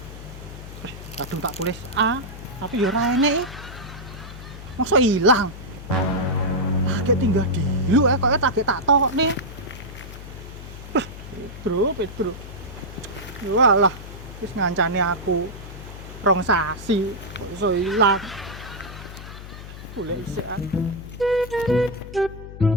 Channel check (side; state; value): left; noise; hum, 13 dB below the sound